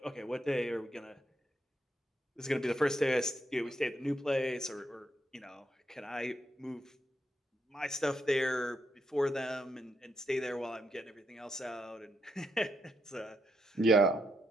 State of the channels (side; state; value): both; normal; correlation 0.80